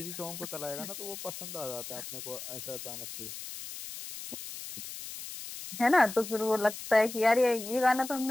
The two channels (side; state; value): left; noise; hiss, 10 dB below the sound